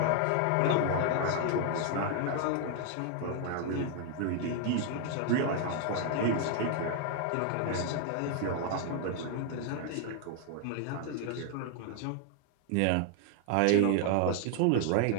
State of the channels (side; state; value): both; different; correlation 0.00